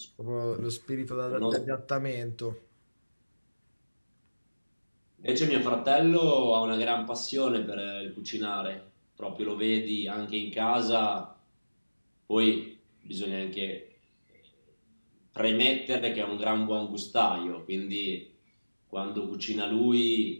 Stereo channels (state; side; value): inverted; both; correlation -1.00